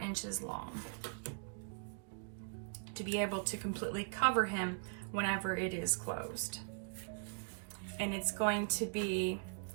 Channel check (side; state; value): left; silent; digital silence